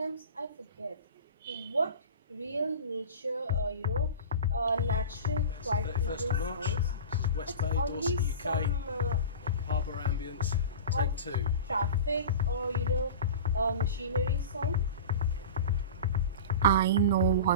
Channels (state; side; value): inverted; both; correlation -0.32